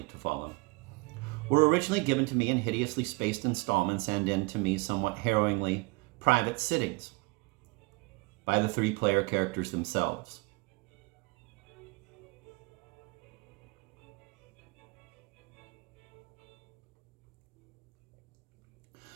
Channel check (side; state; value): left; quieter; 26.6 dB